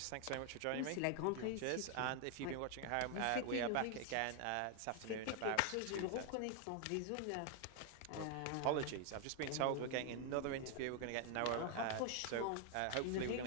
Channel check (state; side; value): different; both; correlation 0.00